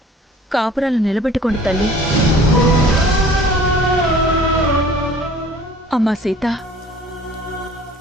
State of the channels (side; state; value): both; normal; correlation 0.49